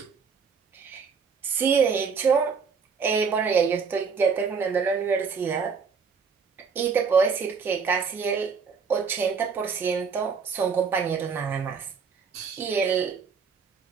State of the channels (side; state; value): left; quieter; 5.7 dB